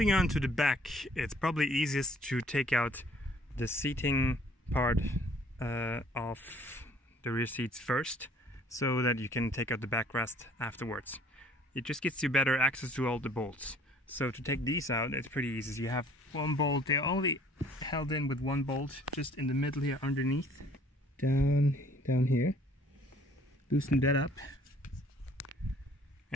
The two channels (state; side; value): normal; both; correlation 0.57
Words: on to the back, it's probably easiest to take out the seating part of the rear seats first, so that you can take out the backrest afterwards. It just gets you better access to all the bolts. So to take these out, it's pretty easy. You have one bolt, they're only held in with one bolt, just in the middle here underneath. Down here. Loosen that up.